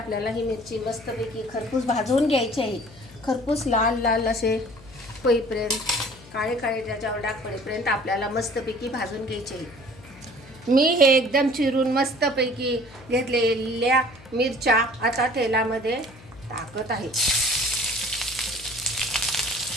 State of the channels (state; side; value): noise; left; hum, 21 dB below the sound